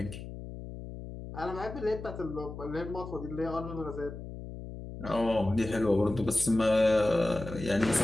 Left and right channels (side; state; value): left; noise; hum, 11 dB below the sound